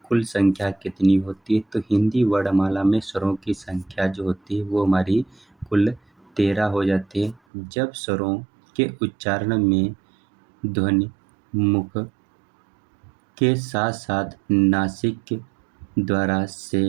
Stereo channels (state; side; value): drops out; left; at 7.4 s